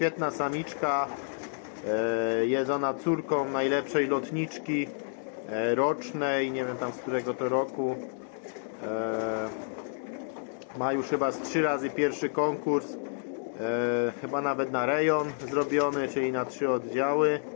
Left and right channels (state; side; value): silent; right; digital silence